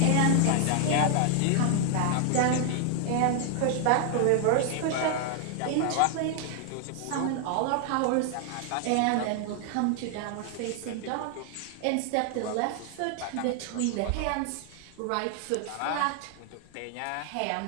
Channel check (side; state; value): both; different; correlation 0.00